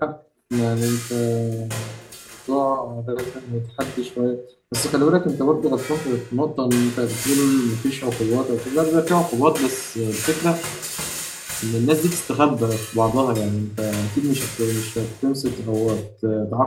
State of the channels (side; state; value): both; identical; correlation 1.00